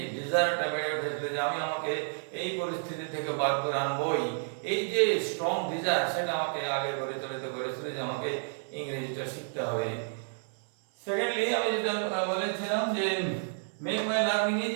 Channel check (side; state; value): left; silent; 57 dB below the other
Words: ডিজায়ারটা বেড়ে উঠেছিল যে আমি আমাকে এই পরিস্থিতি থেকে বার করে আনবই। এই যে স্ট্রং ডিজায়ার, সেটা আমাকে আগে পরিচালিত করেছিল যে আমাকে ইংরেজিটা শিখতে হবে। সেকেন্ডলি, আমি যেটা বলেছিলাম যে make my learning